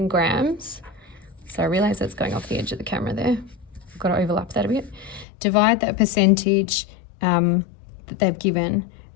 grams. So I realize that's going off the edge of the camera there. I've got to overlap that a bit. Divide that percentage that they've given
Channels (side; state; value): right; drops out; at 5.2 s